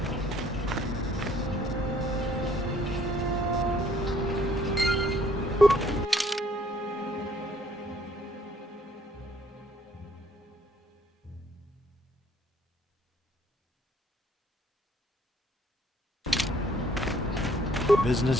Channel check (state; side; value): normal; both; correlation 0.61